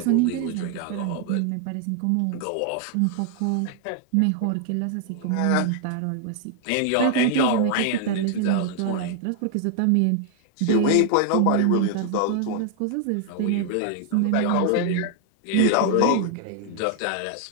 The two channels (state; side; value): different; both; correlation 0.00